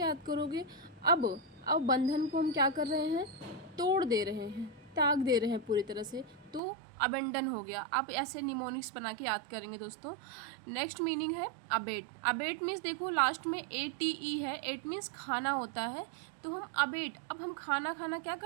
याद करोगे? अब बंधन को हम क्या कर रहे हैं? तोड़ दे रहे हैं, त्याग दे रहे हैं पूरी तरह से। तो अबेंडन हो गया। आप ऐसे निमोनिक्स बना के याद करेंगे दोस्तों। नेक्स्ट मीनिंग है अबेट। अबेट मीन्स देखो लास्ट में ATE है। एट मीन्स खाना होता है। तो हम अबेट, अब हम खाना क्या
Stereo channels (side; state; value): left; drops out; at 6.6 s